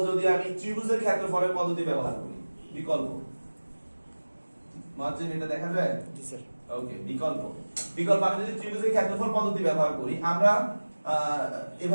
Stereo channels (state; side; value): inverted; both; correlation -1.00